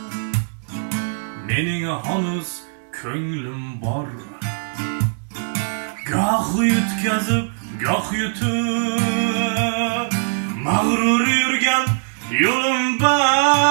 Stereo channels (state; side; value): silent; left; digital silence